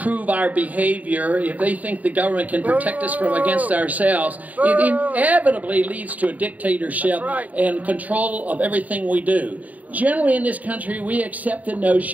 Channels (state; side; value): late; left; 0.074 ms